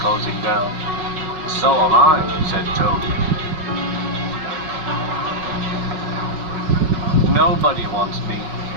down." "So am I," said Toby. Nobody wants me,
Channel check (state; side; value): late; left; 5.5 ms